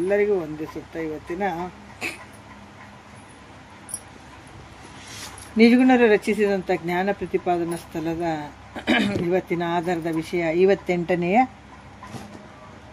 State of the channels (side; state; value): both; identical; correlation 1.00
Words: ವಂದಿಸುತ್ತಾ, ಇವತ್ತಿನ ನಿಜಗುಣರು ರಚಿಸಿದಂಥ ಜ್ಞಾನ ಪ್ರತಿಪಾದನಾ ಸ್ಥಳದ ಇವತ್ತಿನ ಆಧಾರದ ವಿಷಯ 58ನೆಯ